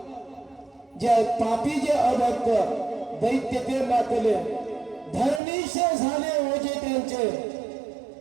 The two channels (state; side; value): drops out; left; at 5.4 s